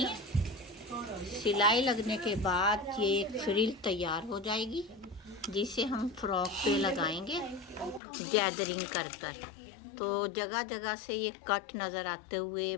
है। सिलाई लगने के बाद ये फ्रिल तैयार हो जाएगी, जिसे हम फ्रॉक पे लगाएंगे गैदरिंग कर कर। तो जगह जगह से ये कट नज़र आते हुए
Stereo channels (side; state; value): right; drops out; at 8.0 s